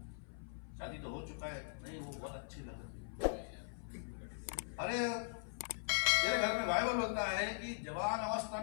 शादी तो हो चुका है, नहीं वो बहुत अच्छी लगती है। अरे तेरे घर में बाइबल बोलता है कि जवान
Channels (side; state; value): right; silent; 51 dB below the other